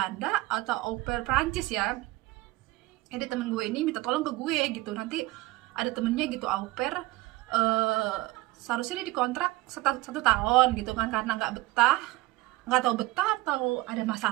atau au pair Prancis ya. Jadi temen gue ini minta tolong ke gue gitu, nanti ada temennya gitu au pair, seharusnya dia dikontrak 1 tahun gitu kan, karena nggak tahu betah atau ada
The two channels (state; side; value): quieter; left; 19.2 dB